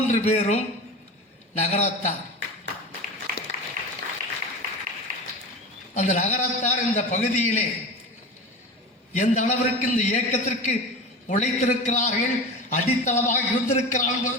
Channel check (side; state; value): both; normal; correlation 0.29